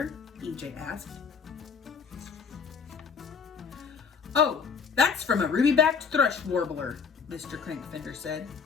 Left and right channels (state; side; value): quieter; right; 6.0 dB